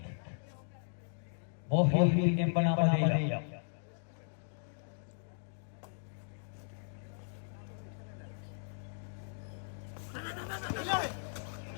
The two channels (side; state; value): right; silent; digital silence